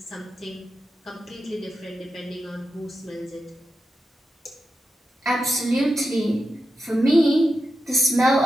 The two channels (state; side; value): normal; both; correlation 0.89